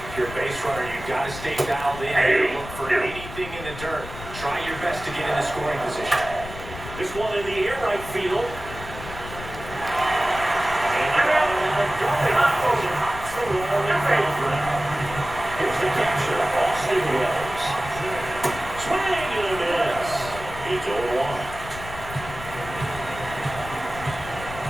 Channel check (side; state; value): left; noise; rumble, 12 dB below the sound